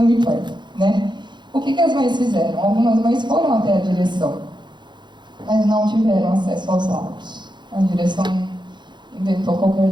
importa, né? O que as mães fizeram? Algumas mães foram até a direção, mas não tiveram acesso aos laudos. A direção inventou qualquer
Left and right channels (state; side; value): late; left; 0.22 ms